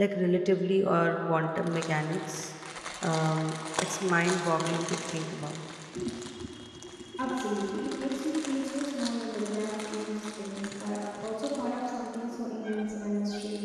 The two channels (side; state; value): both; identical; correlation 1.00